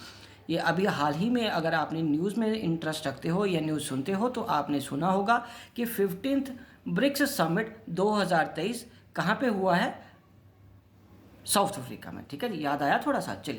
ये अभी हाल ही में, अगर आपने न्यूज़ में इंटरेस्ट रखते हो या न्यूज़ सुनते हो तो आपने सुना होगा कि 15th ब्रिक्स समिट 2023 कहाँ पे हुआ है? साउथ अफ्रीका में। ठीक है जी, याद आया थोड़ा सा?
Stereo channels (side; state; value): both; identical; correlation 1.00